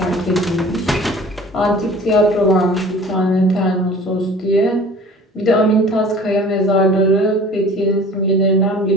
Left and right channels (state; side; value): normal; both; correlation 0.45